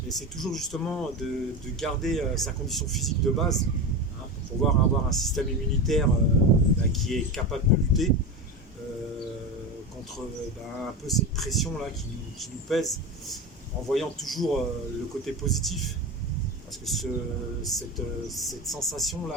Et c'est toujours justement de garder sa condition physique de base pour pouvoir avoir un système immunitaire qui est capable de lutter contre un peu cette pression là qui nous pèse, en voyant toujours le côté positif, parce que cette sensation là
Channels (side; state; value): both; normal; correlation 0.22